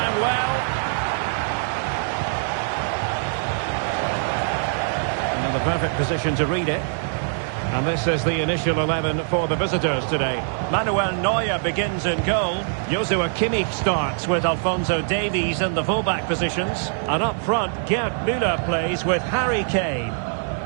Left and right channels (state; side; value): silent; left; digital silence